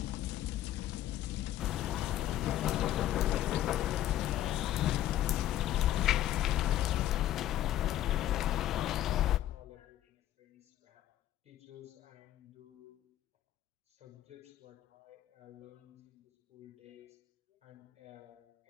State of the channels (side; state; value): right; quieter; 12.9 dB